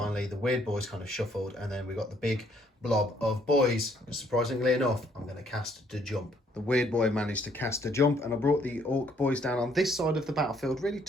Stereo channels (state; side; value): normal; both; correlation 0.66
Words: the weird boys kind of shuffled, and then we got the big blob of boys. Surprisingly enough, I'm going to cast the jump. The weird boy managed to cast a jump, and I brought the orc boys down on this side of the battlefield, really